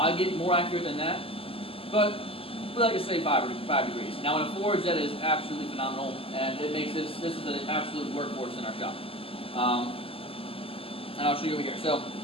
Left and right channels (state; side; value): late; right; 0.27 ms